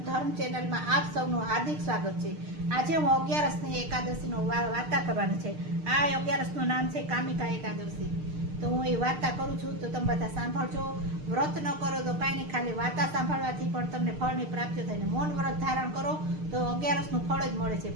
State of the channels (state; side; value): late; left; 6.6 ms